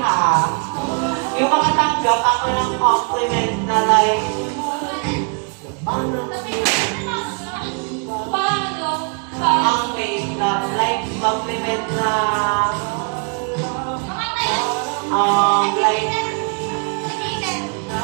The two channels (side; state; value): left; quieter; 39.8 dB